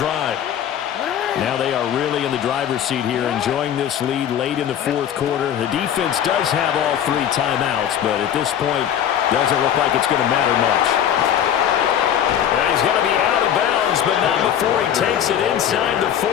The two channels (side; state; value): right; quieter; 9.8 dB